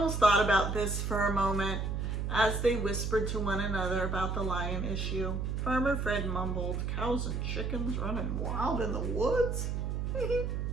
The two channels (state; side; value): noise; right; hum, 1 dB below the sound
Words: thought about this for a moment as they whispered to one another about the lion issue. Farmer Fred mumbled, "Cows and chickens running wild in the woods?"